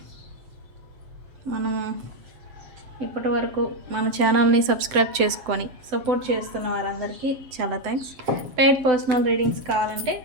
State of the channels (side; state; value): left; late; 7.9 ms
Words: మనం ఇప్పటి వరకు మన ఛానల్ని సబ్స్క్రైబ్ చేసుకొని సపోర్ట్ చేస్తున్న వారందరికీ చాలా థ్యాంక్స్. పెయిడ్ పర్సనల్ రీడింగ్స్ కావాలంటే